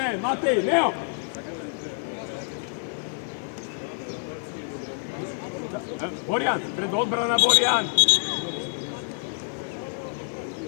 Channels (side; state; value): right; silent; digital silence